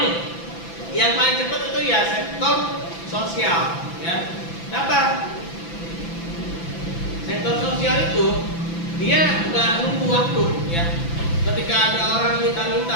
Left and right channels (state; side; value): late; right; 6.0 ms